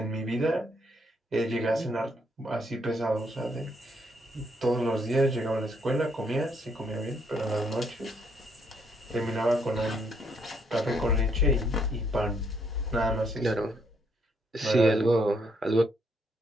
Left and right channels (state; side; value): normal; both; correlation 0.72